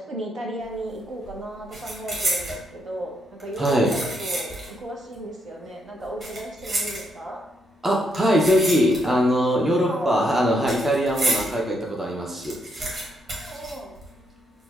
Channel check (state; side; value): normal; both; correlation 0.77